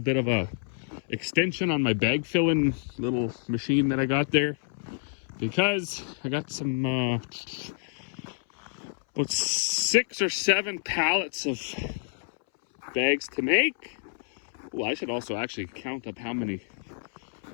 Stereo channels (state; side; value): silent; right; 59 dB below the other